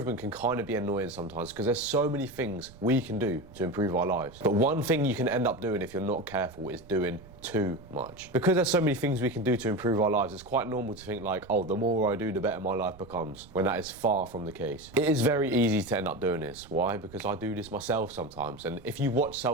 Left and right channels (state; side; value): noise; right; rumble, 20 dB below the sound